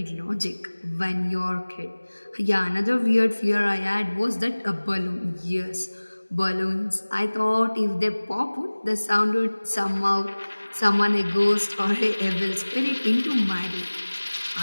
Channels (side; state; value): both; inverted; correlation -1.00